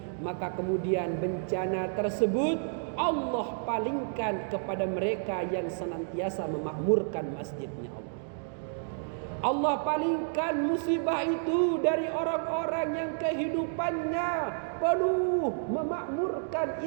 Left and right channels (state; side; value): silent; left; digital silence